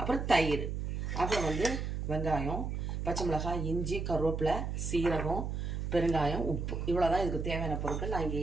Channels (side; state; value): right; noise; hum, 3 dB below the sound